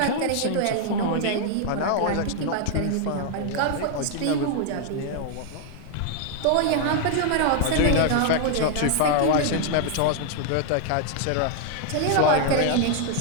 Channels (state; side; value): different; both; correlation 0.00